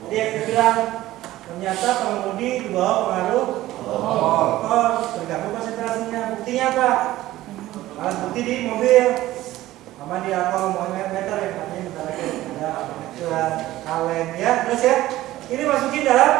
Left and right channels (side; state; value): left; quieter; 15.7 dB